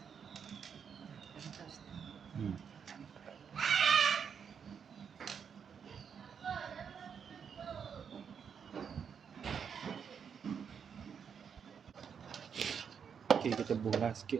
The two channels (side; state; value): left; quieter; 7.1 dB